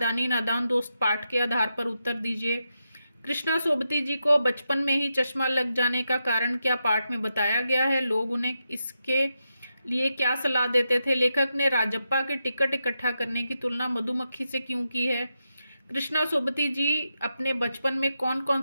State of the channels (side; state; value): both; inverted; correlation -0.86